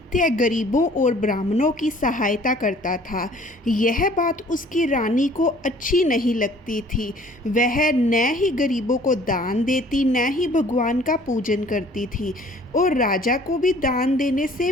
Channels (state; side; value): normal; both; correlation 0.53